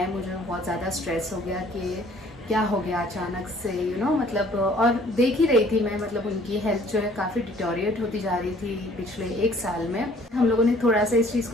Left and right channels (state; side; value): normal; both; correlation 0.56